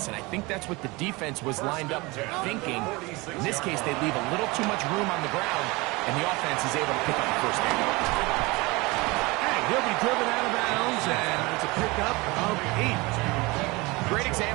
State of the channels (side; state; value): left; quieter; 24.0 dB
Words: and I think that's what the defense was lined up thinking. In this case, they leave a little too much room on the ground, and the offense is able to pick up the first down. And he'll be driven out of bounds, and it's a pickup of 8. Great